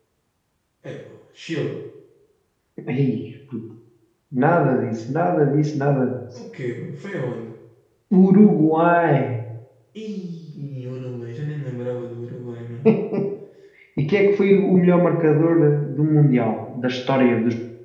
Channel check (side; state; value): both; identical; correlation 1.00